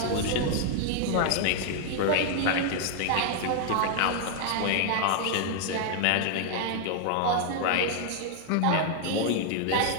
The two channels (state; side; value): different; both; correlation 0.00